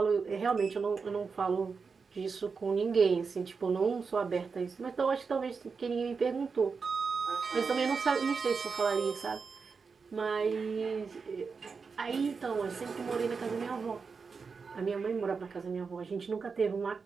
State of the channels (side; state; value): left; quieter; 5.1 dB